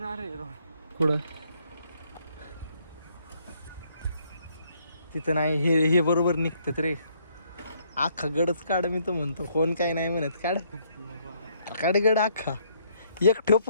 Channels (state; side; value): inverted; both; correlation -0.69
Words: आहे कुठं तिथं नाही हे बरोबर निघतात रे अख्खा गडच काढ मी तर म्हणतो कोण काय नाही म्हणत काढ गड अख्खा एक ठेव